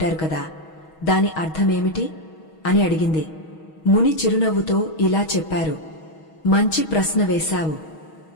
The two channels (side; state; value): right; late; 6.3 ms